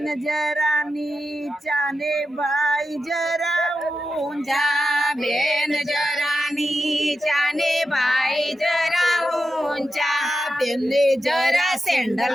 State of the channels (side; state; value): both; normal; correlation 0.90